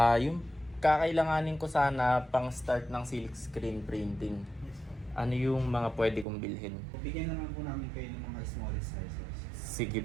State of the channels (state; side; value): drops out; left; at 6.2 s